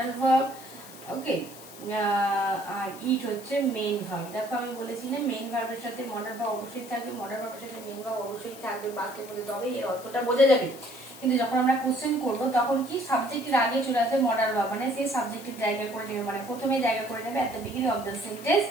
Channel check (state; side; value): noise; left; hiss, 17 dB below the sound